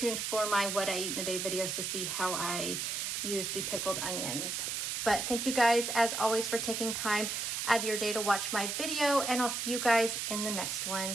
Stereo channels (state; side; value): noise; right; hiss, 2 dB below the sound